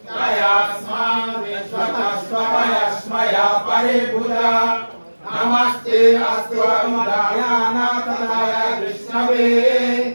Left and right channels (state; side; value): inverted; both; correlation -1.00